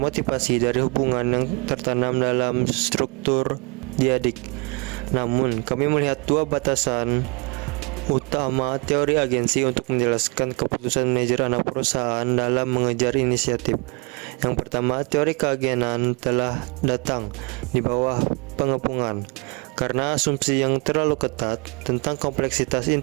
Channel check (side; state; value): left; quieter; 31.1 dB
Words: dari hubungan yang tertanam dalam struktur diadik. Namun, kami melihat dua batasan utama teori agensi untuk menjelaskan keputusan manajer anak perusahaan dalam mengejar inisiatif. Yang pertama, teori keagenan telah datang di bawah pengepungan karena asumsi yang terlalu ketat tentang kompleksitas